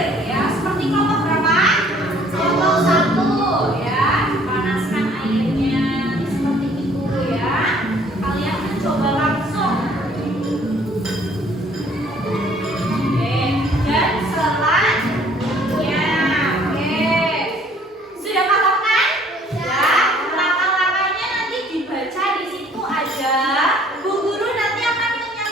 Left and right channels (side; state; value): both; normal; correlation 0.58